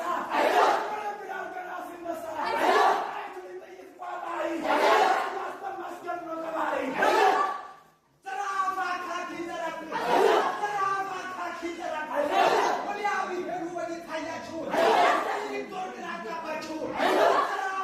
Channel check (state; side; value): identical; both; correlation 1.00